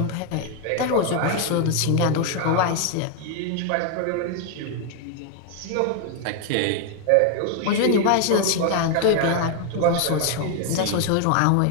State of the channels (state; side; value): different; both; correlation 0.01